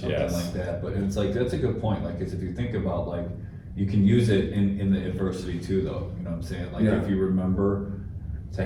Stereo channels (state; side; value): identical; both; correlation 1.00